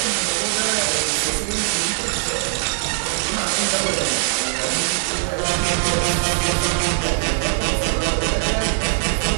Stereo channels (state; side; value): silent; left; digital silence